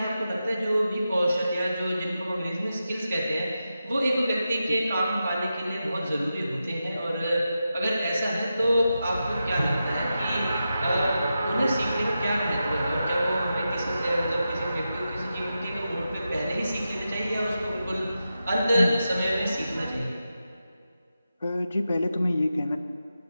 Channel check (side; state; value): both; inverted; correlation -0.90